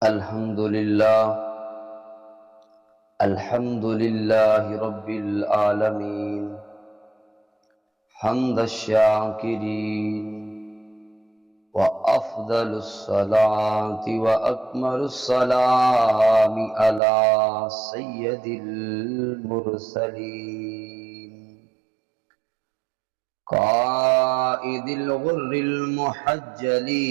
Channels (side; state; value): left; drops out; at 17.0 s